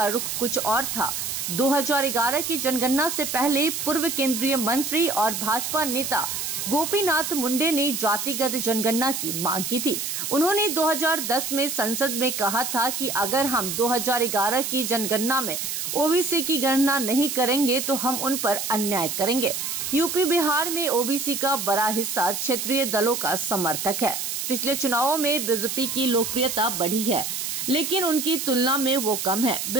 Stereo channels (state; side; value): noise; right; hiss, 3 dB below the sound